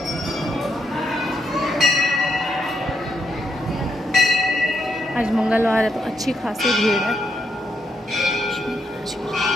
आज मंगलवार है तो अच्छी खासी भीड़ है।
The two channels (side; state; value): both; normal; correlation 0.80